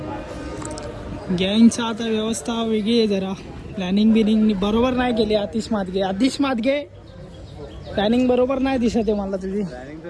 गँगचा आता व्यवस्था वेगळी आहे जरा. प्लॅनिंग बरोबर नाही केली. आतिश मादगे प्लॅनिंग बरोबर नाही दिसत आहे मला तुझी.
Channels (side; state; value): both; identical; correlation 1.00